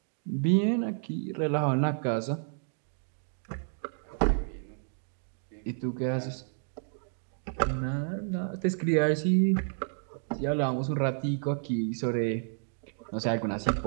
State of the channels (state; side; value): silent; left; digital silence